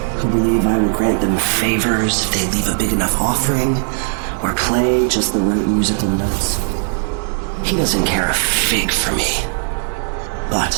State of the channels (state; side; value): silent; left; 68 dB below the other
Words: who believe I will grant them favors if they leave a big enough offering or play just the right musical notes. He doesn't care a fig for me.